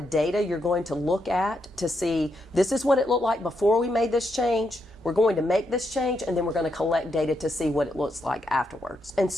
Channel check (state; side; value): normal; both; correlation 0.81